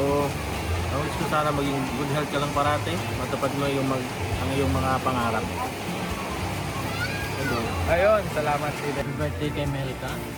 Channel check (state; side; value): identical; both; correlation 1.00